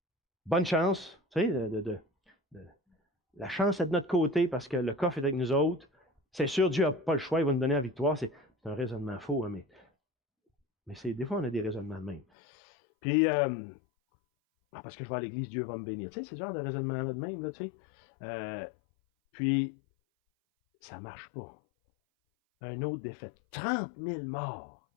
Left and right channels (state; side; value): drops out; right; at 12.2 s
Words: bonne chance, tu sais, la chance est de notre côté parce que le coffre est avec nous autres. C'est sûr, Dieu n'a pas le choix, il va nous donner la victoire. C'est un raisonnement faux, hein, mais des fois, on a des raisonnements de même. Puis, parce que je vais à l'église, Dieu va me bénir. Tu sais, c'est ce genre de raisonnement-là de même, là, tu sais. Puis, ça ne marche pas. Un autre défaite. 30 000 morts.